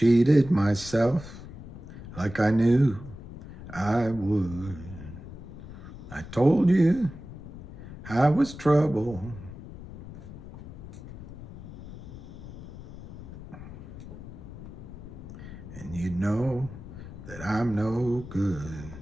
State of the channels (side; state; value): left; noise; rumble, 13 dB below the sound